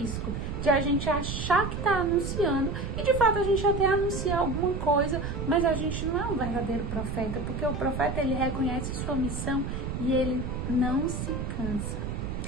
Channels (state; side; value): noise; right; rumble, 4 dB below the sound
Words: de a gente achar que está anunciando e de fato a gente até anuncia alguma coisa, mas a gente não é um verdadeiro profeta, porque o profeta ele reconhece sua missão e ele não se cansa.